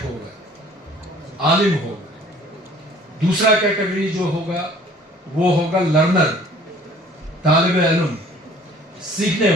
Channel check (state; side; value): normal; both; correlation 0.52